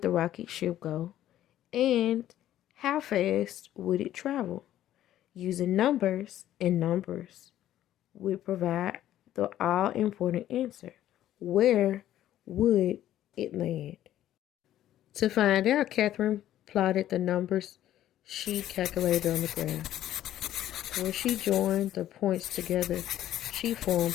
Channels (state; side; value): quieter; right; 12.6 dB